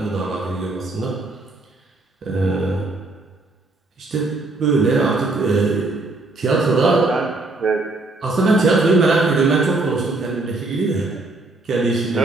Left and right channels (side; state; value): left; quieter; 3.2 dB